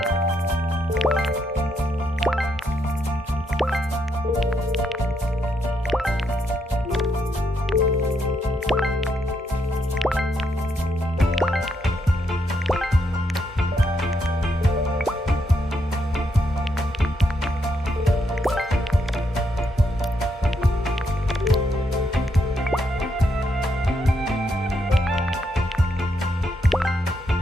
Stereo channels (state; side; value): normal; both; correlation 0.78